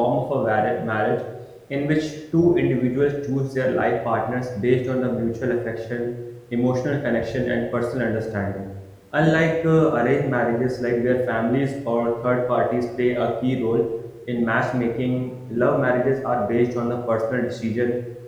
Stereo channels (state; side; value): identical; both; correlation 1.00